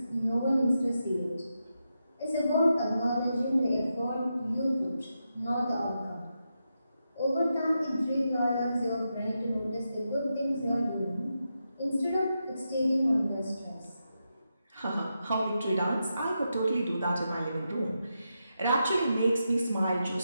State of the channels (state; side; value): inverted; both; correlation -0.86